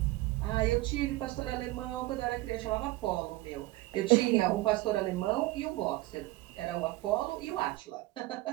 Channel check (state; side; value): quieter; left; 18.9 dB